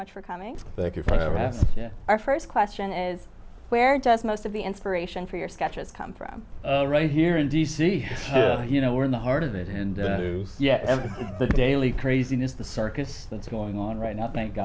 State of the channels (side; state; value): both; identical; correlation 1.00